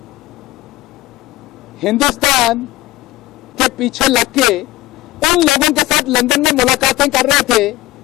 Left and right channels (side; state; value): right; quieter; 17.6 dB